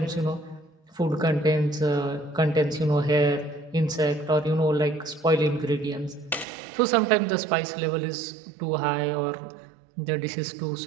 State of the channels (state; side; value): drops out; left; at 6.5 s